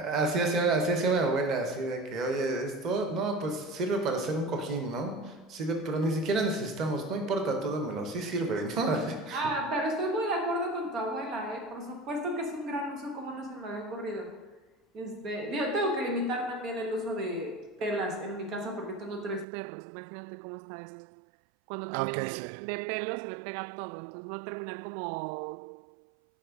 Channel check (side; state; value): left; drops out; at 19.5 s